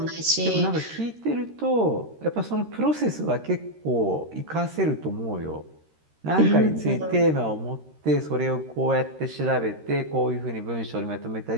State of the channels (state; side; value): late; left; 13 ms